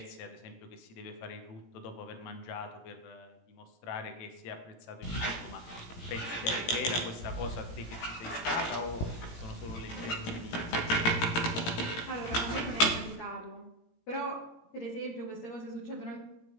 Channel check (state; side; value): late; right; 17 ms